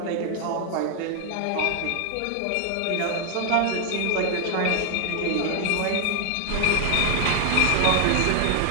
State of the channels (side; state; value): both; different; correlation 0.00